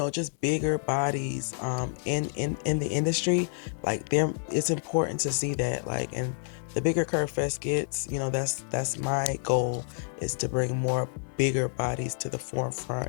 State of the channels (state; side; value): silent; right; 59 dB below the other